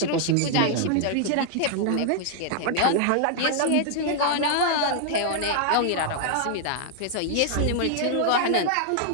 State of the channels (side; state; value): both; different; correlation 0.00